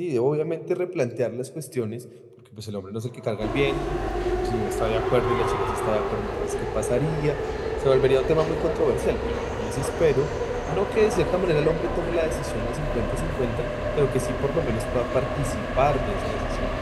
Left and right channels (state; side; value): identical; both; correlation 1.00